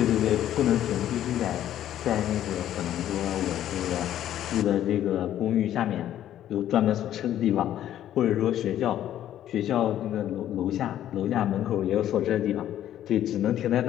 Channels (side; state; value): right; quieter; 11.7 dB